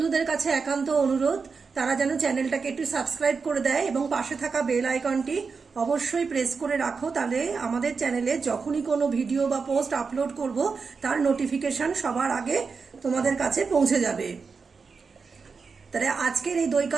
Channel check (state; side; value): quieter; left; 5.1 dB